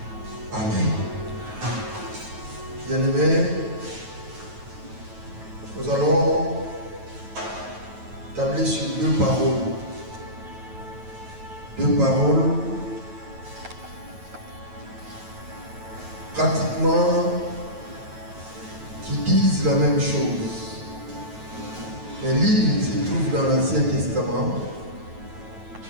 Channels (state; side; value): late; left; 9.2 ms